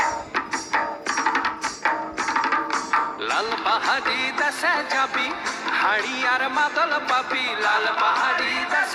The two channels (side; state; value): both; identical; correlation 1.00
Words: লাল পাহাড়ি দেশে যাবি হাড়ি আর মাদল পাবি, লাল পাহাড়ি